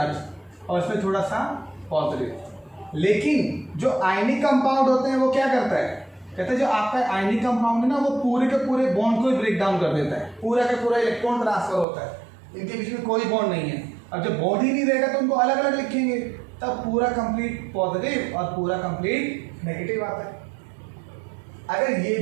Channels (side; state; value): left; drops out; at 11.9 s